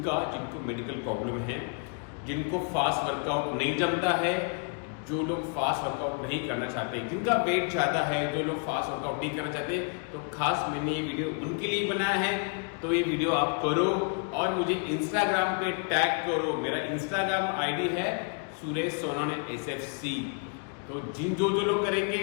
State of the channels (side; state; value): right; quieter; 38.9 dB